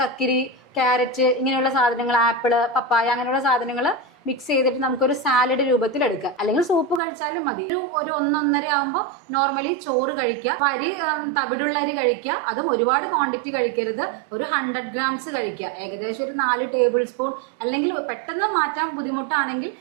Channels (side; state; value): left; drops out; at 7.0 s